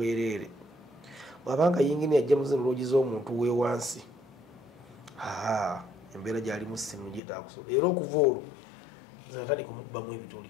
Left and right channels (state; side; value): drops out; right; at 7.2 s